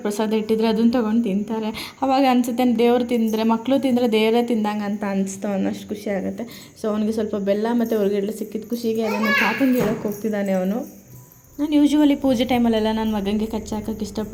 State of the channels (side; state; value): both; identical; correlation 1.00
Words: ಪ್ರಸಾದ ಇಟ್ಟಿದ್ರೆ ಅದನ್ನು ತೊಗೊಂಡು ತಿಂತಾರೆ. ಅವಾಗ ಅನಿಸುತ್ತೆ ದೇವ್ರು ತಿಂದರೆ, ಮಕ್ಕಳು ತಿಂದರೆ ದೇವರೇ ತಿಂದಂಗೆ ಅಂತ ಅನಿಸ್ತು ಅನ್ನೋಷ್ಟು ಖುಷಿ ಆಗುತ್ತೆ. ಸೊ ಅವನಿಗೆ ಸ್ವಲ್ಪ ಬೆಲ್ಲ ಮತ್ತು ಹುರ್ಗಡ್ಲೆ ಸಿಕ್ಕಿದ ಖುಷಿಗೆ ಅದನ್ನು ತಾತಂಗೆ ಹೇಳೋಕ್ಕೆ ಹೋಗ್ತಿದ್ದಾನೆ ಅವನು. ನಾನು ಯೂಶ್ವಲಿ ಪೂಜೆ ಟೈಮಲ್ಲೆಲ್ಲ ನನ್ನ ಮಗನಿಗೆ ಕಚ್ಚೆ ಹಾಕೋಕ್ಕೆ